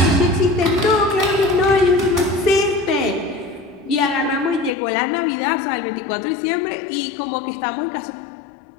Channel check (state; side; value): drops out; right; at 4.7 s